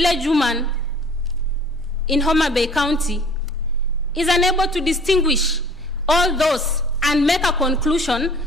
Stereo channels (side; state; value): both; normal; correlation 0.49